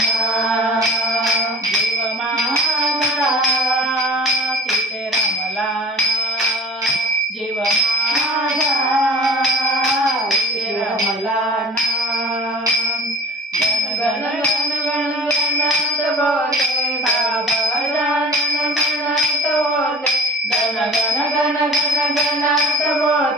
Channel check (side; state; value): both; normal; correlation 0.42